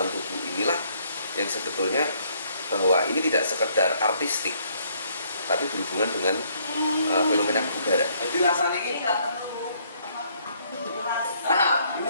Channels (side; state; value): both; inverted; correlation -0.67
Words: tubuh inilah yang sebetulnya bahwa ini tidak sekedar artistik, tapi berhubungan dengan fenomena kebugaran. Jadi rasanya ini ini